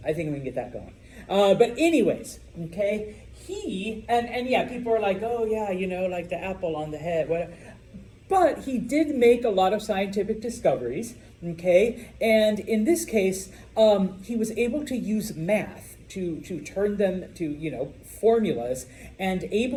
I think we can get that going. But anyways, okay, and yeah, people are like, oh yeah, like the apple on the head, whatever. But he did make a lot of scientific discoveries, okay, and in this case, he was able to use math to turn them to, formulas, and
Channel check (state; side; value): identical; both; correlation 1.00